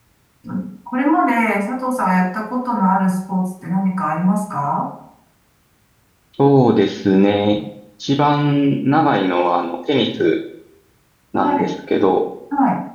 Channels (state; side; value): identical; both; correlation 1.00